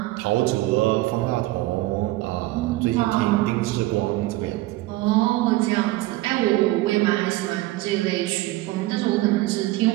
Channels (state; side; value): quieter; left; 18.2 dB